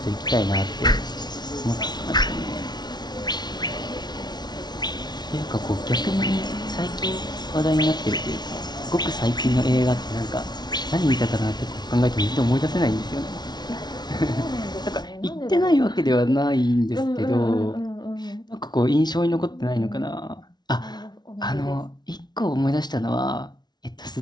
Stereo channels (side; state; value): right; late; 0.20 ms